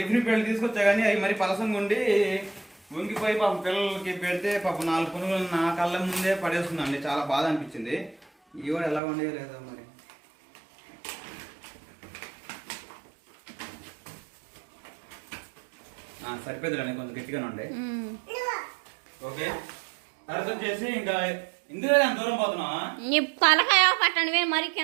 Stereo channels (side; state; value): left; drops out; at 9.0 s